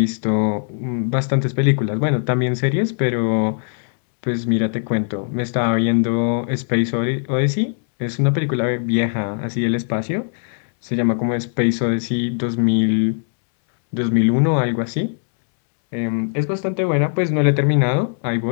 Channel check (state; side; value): silent; right; 66 dB below the other